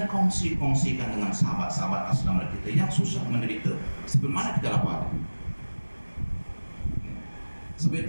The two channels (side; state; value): both; inverted; correlation -1.00